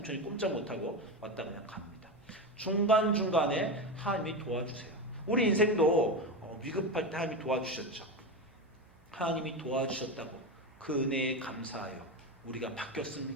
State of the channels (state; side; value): noise; right; hum, 28 dB below the sound